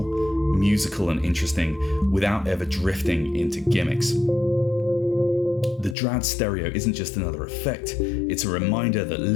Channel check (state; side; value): drops out; right; at 6.0 s